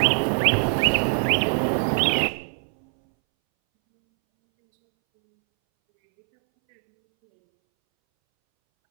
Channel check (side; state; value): left; silent; 64 dB below the other